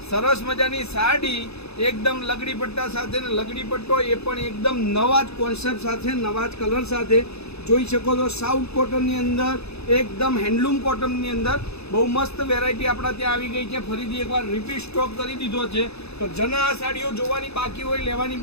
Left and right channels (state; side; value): late; right; 0.79 ms